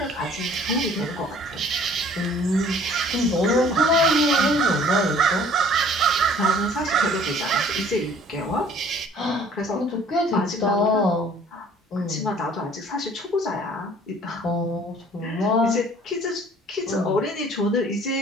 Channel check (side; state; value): both; normal; correlation 0.53